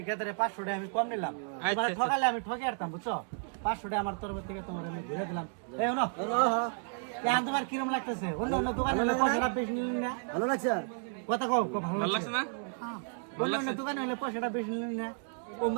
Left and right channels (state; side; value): silent; left; 56 dB below the other